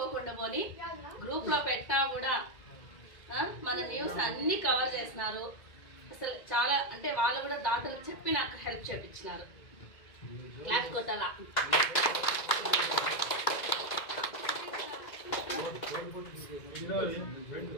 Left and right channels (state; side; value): late; right; 2.0 ms